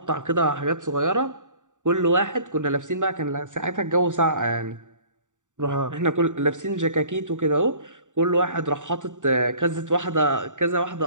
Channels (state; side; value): late; left; 0.86 ms